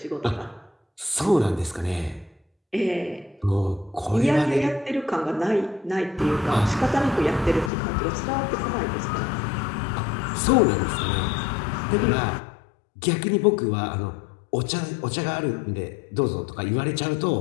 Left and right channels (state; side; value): drops out; right; at 7.7 s